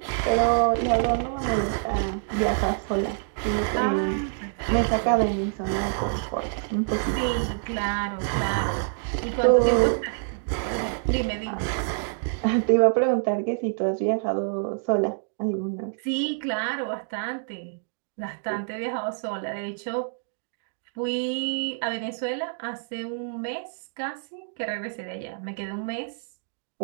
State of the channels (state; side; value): silent; left; digital silence